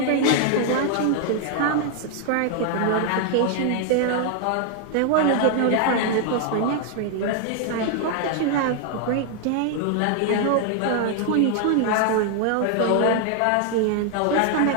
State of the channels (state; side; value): different; both; correlation 0.00